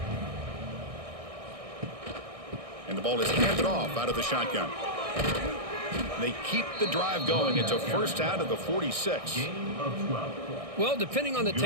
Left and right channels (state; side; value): late; left; 1.6 ms